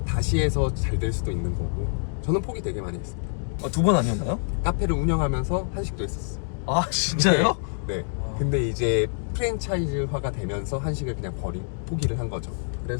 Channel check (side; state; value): right; silent; 61 dB below the other